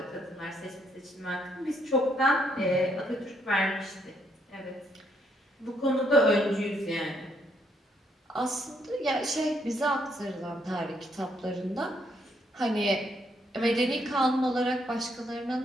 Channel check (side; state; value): both; normal; correlation 0.72